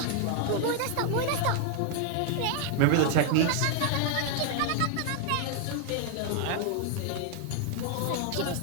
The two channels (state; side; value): different; both; correlation 0.00